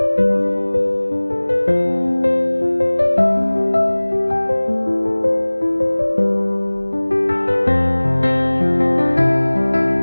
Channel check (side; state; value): both; inverted; correlation -1.00